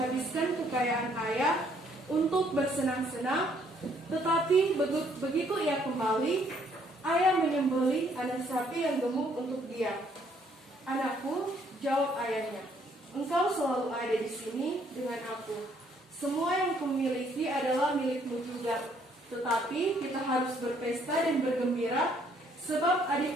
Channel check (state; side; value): normal; both; correlation 0.66